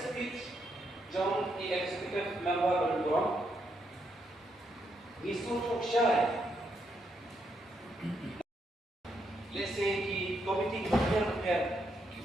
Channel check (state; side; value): normal; both; correlation 0.79